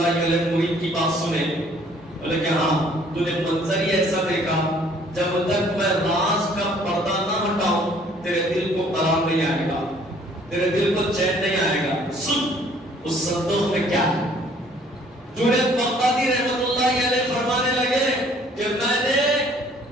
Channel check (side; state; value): both; normal; correlation 0.58